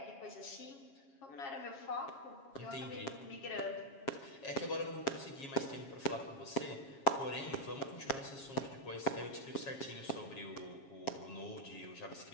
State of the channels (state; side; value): late; right; 7.3 ms